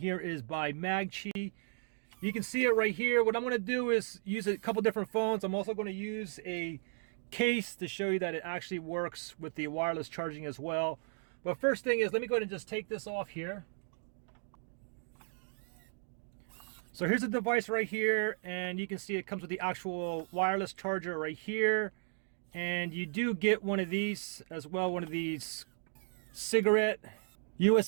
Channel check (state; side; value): silent; left; 54 dB below the other